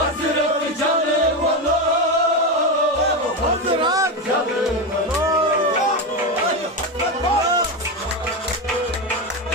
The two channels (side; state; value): both; normal; correlation 0.14